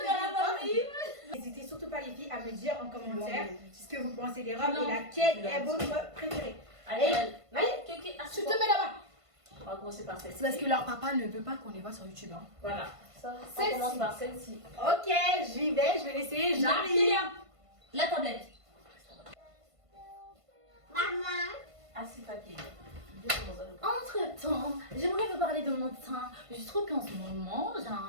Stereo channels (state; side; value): late; left; 1.5 ms